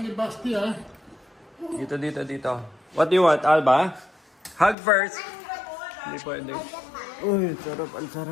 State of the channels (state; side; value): drops out; right; at 4.8 s